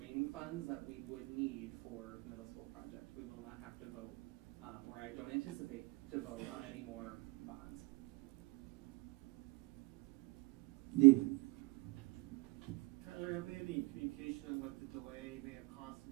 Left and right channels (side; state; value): left; quieter; 26.0 dB